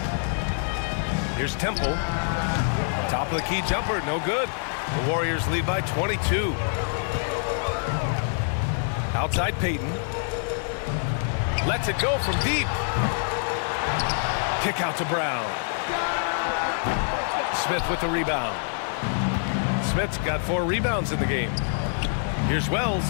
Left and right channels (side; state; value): right; silent; digital silence